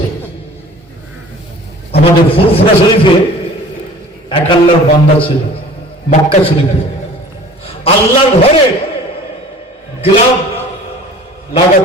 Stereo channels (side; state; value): both; normal; correlation 0.46